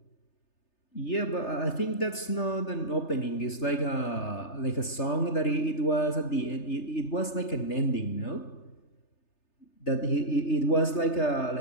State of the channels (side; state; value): right; late; 3.3 ms